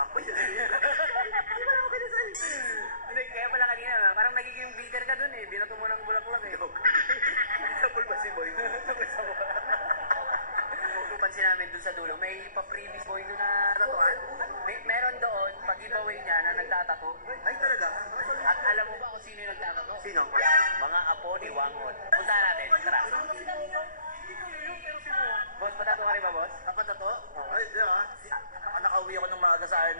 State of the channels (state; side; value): late; left; 0.39 ms